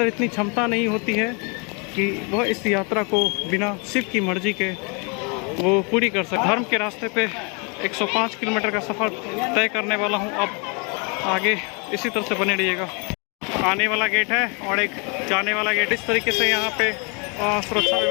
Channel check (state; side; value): quieter; right; 34.0 dB